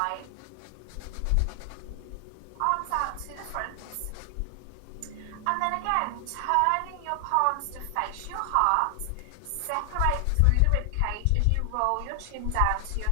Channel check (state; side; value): different; both; correlation 0.00